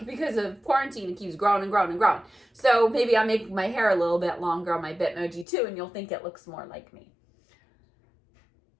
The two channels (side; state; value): right; drops out; at 5.5 s